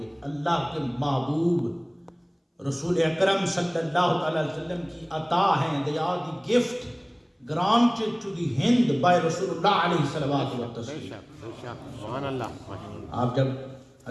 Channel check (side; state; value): both; identical; correlation 1.00